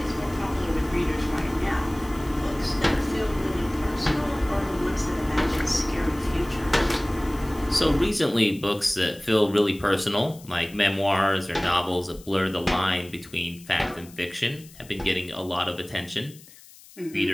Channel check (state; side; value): noise; left; hiss, 22 dB below the sound